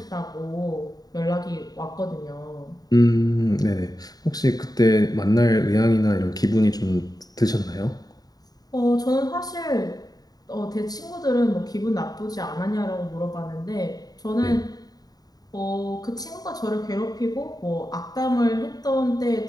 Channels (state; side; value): late; right; 0.18 ms